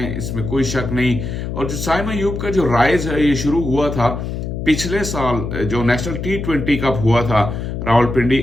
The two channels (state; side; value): noise; left; hum, 5 dB below the sound